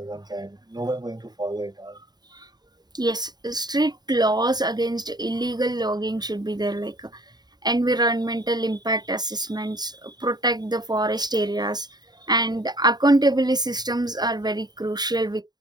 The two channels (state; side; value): late; left; 0.20 ms